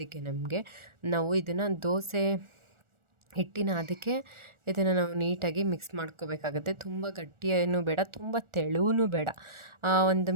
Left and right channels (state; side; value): late; left; 1.4 ms